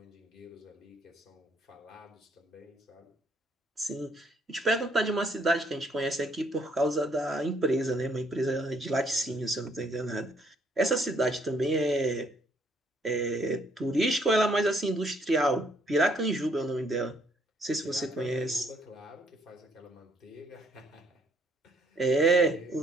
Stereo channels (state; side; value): normal; both; correlation 0.67